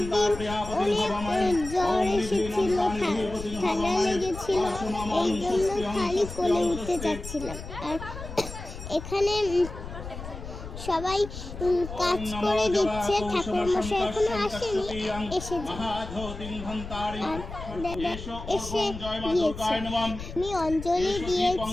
দিন অনেক জ্বর এসেছিল, ঠান্ডা লেগেছিল, এই জন্য খালি কোলে উঠতে যাচ্ছিলাম। আর এখানে সবাই কাজ করে দিচ্ছে, ঠাকুরমশাই এখনো আসেনি, এসে গিয়েছে। আমি অঞ্জলি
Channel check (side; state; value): left; noise; rumble, 10 dB below the sound